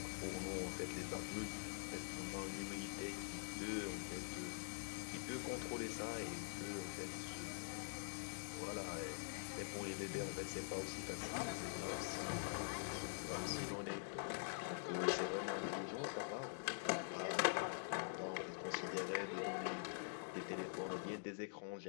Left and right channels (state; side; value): silent; right; digital silence